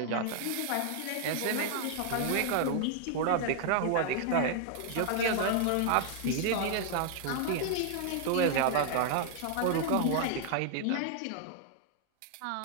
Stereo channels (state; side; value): different; both; correlation 0.00